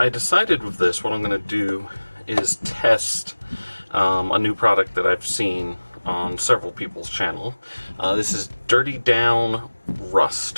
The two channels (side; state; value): both; inverted; correlation -1.00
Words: decided with this, what I'm going to do is test a new product that I've seen on several people's channel. This is Dirty Down